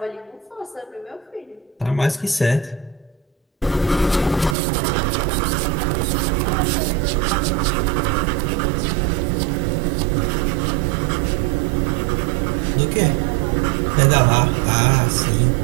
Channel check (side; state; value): left; drops out; at 4.5 s